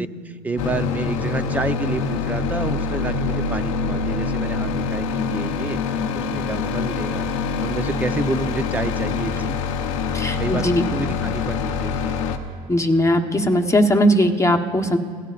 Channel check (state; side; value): normal; both; correlation 0.51